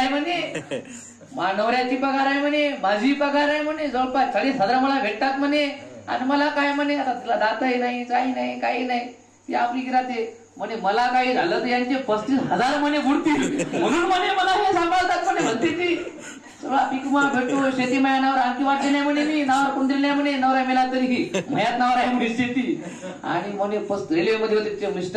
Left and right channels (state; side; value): identical; both; correlation 1.00